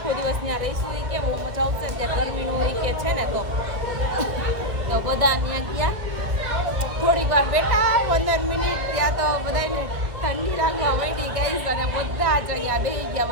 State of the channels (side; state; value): left; late; 1.4 ms